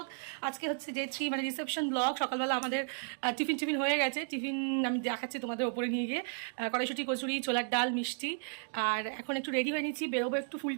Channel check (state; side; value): silent; left; 55 dB below the other